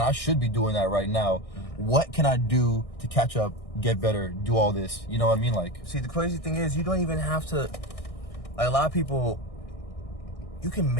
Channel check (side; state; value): right; late; 1.6 ms